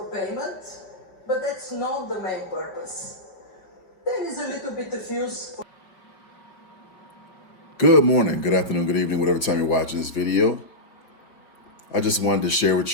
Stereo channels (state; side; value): late; right; 5.4 ms